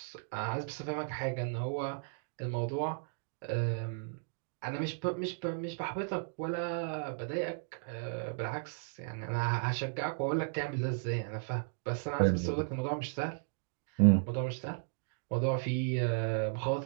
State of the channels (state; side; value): silent; left; digital silence